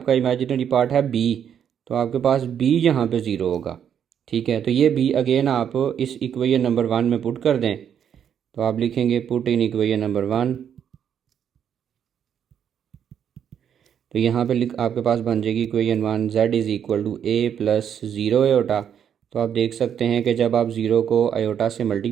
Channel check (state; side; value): quieter; left; 8.6 dB